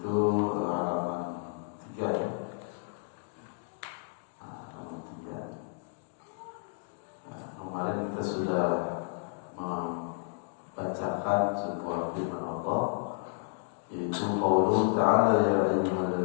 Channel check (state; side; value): silent; right; 57 dB below the other